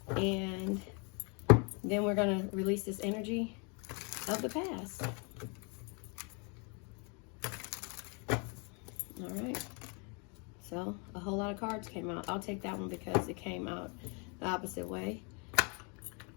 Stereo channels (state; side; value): quieter; right; 34.3 dB